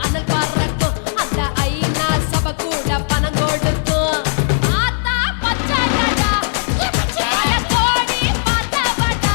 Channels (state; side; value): silent; right; digital silence